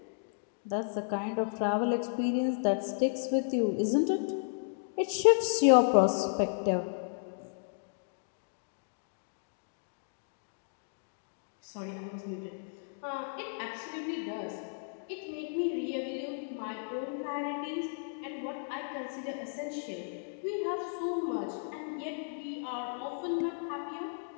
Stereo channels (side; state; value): right; silent; digital silence